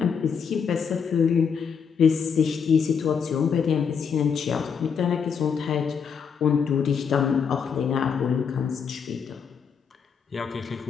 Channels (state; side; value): quieter; right; 6.6 dB